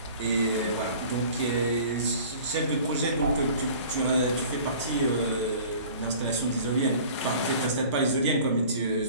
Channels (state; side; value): inverted; both; correlation -0.46